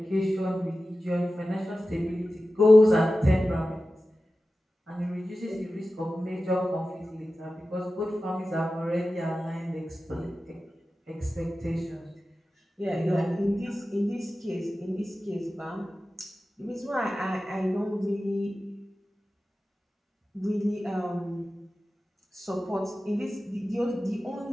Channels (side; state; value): both; normal; correlation 0.94